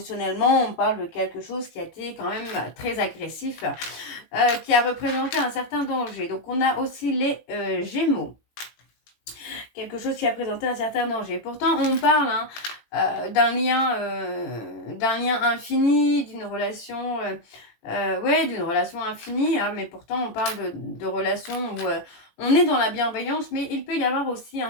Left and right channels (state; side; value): late; right; 18 ms